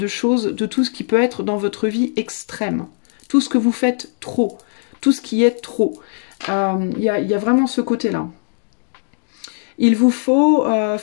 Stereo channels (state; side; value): silent; right; 66 dB below the other